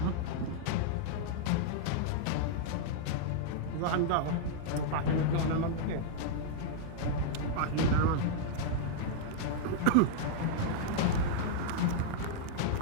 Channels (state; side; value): different; both; correlation -0.01